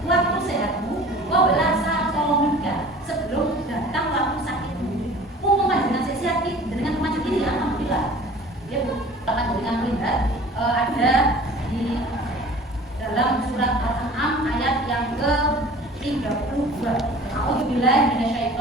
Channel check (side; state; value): both; normal; correlation 0.45